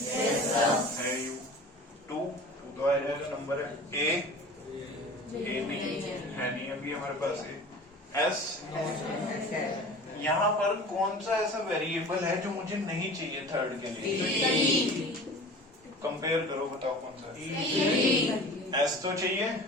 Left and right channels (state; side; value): normal; both; correlation 0.40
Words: है U, 2 तो आ जाएगा नंबर है। A नहीं है, नहीं अभी हमारे पास S। यहाँ पर कौन सा ऐसा वेरिएबल है जो मुझे नहीं चाहिए थर्ड के लिए? कंपेयर करो, बताओ कौन सा। S तो चाहिए